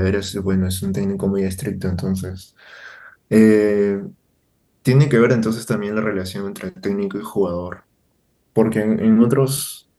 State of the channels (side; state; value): both; identical; correlation 1.00